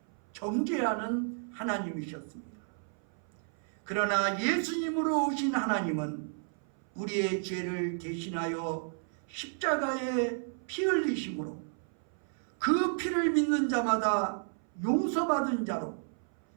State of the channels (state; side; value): silent; left; 56 dB below the other